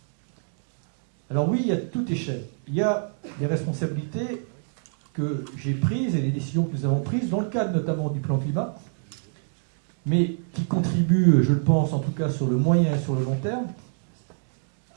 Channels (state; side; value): silent; left; digital silence